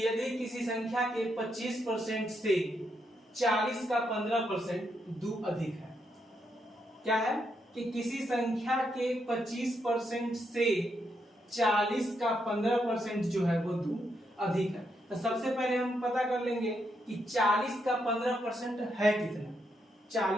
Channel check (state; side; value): normal; both; correlation 0.79